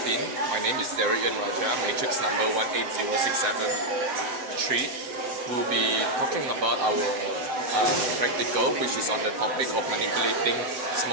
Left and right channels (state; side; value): late; left; 7.9 ms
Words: My name is Darian Raja, matrix number 180673. We'll be talking about our practical, which is on the topic of manipulating